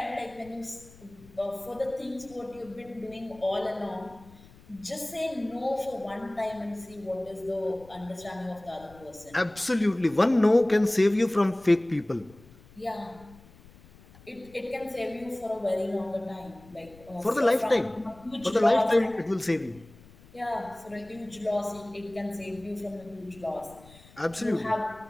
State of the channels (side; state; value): left; noise; rumble, 23 dB below the sound